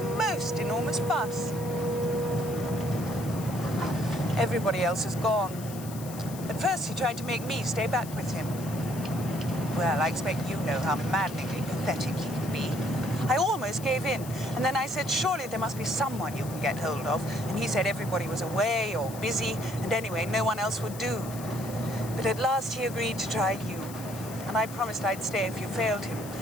enormous fuss. Everybody else is gone. At first, he tried to make me stay back with him. Well, I expect you know how maddeningly pathetic he can be. I almost gave in, and then I said, surely there must be someone you can get hold of. And he said everybody was away or busy, and anyway, no one else would do. But at last he agreed to try you, and I promised I'd stay if you failed him.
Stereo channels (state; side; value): noise; left; hiss, 15 dB below the sound